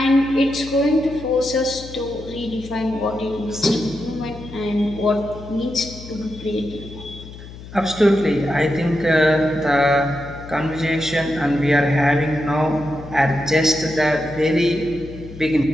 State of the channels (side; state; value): left; noise; hum, 15 dB below the sound